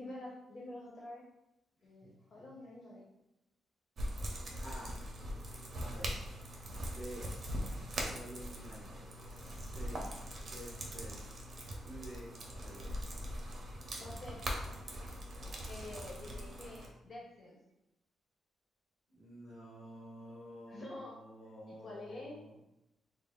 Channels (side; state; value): both; normal; correlation 0.84